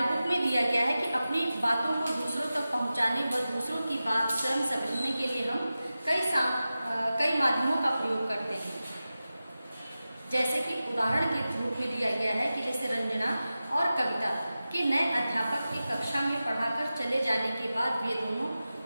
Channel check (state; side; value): inverted; both; correlation -0.94